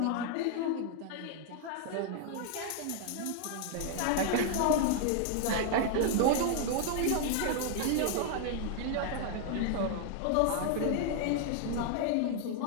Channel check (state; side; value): different; both; correlation 0.00